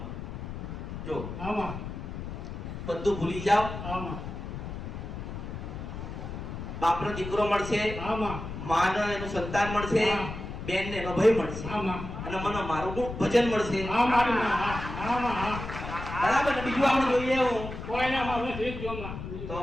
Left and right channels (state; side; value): noise; left; rumble, 8 dB below the sound